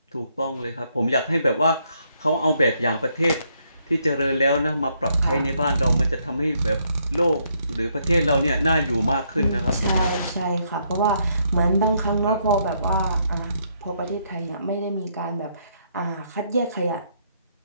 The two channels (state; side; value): inverted; both; correlation -0.73